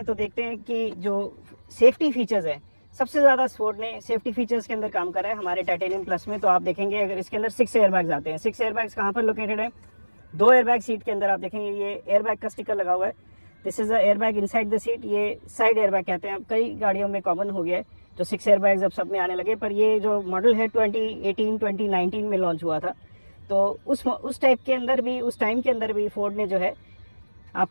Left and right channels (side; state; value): both; inverted; correlation -1.00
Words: तो देखते हैं कि जो सेफ्टी फीचर्स है, सबसे ज़्यादा फोर्ड ने सेफ्टी फीचर्स के अंदर काम करा है हमारे टाइटेनियम प्लस में। तो आप देखेंगे अगर इसके अंदर 6 एयरबैग्स आते हैं। 6 एयरबैग्स कहाँ पर लोकेटेड है? 2 एयरबैग सीट के अंदर आप देखेंगे ये एयरबैग का स्टिकर लगा हुआ है। This is a airbag inside the seat, ये साइड एयरबैग कहते हैं। अब कई गाड़ियों में कॉमन हो गया है जो 6 एयरबैग्स अब सब में आने लगे, पर ये जो मॉडल है 2018-2019 में लॉन्च हुआ था। तो उस टाइप के अंदर भी, उस टाइम के अंदर भी फोर्ड ने जो है